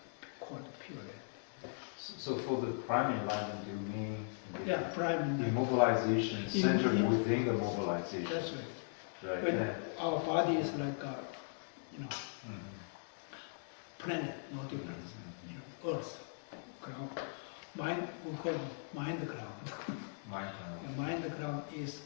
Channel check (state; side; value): silent; right; digital silence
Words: called pure land. So for the prime enlightenment, you mean Prime the enlightenment. mobilization centered within the mobilization? That's right. Right. When Yeah. our body is like a, planet, no difference. Earth, ground. Mind, we call it mind ground. Mind. And mind ground is